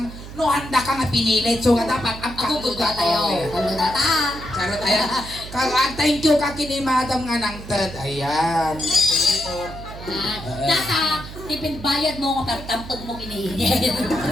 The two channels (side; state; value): right; noise; hum, 13 dB below the sound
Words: No, handa ka nga pinilit. So, nga dapat ang Ako gugwa tayo! Ano na ta? Charot, ayan. Thank you ka kini madam nga nang third. Ayan. Data! Tipid bayad mo nga pertampag mo kinihingi.